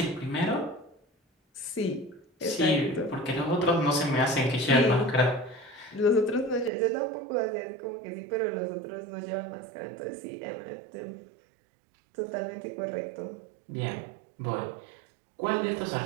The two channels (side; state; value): left; drops out; at 6.7 s